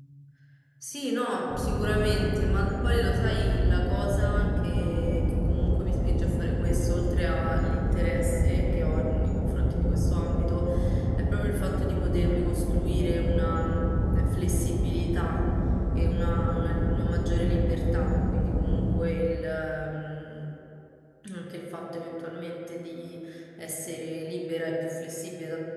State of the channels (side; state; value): both; identical; correlation 1.00